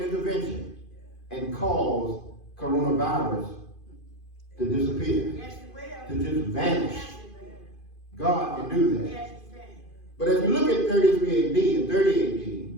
and cause coronavirus to disappear, yes, it will. to just vanish. Yes, it will. God can do that. Yes, it can. But as we look at 33 AD and 30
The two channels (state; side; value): late; right; 2.5 ms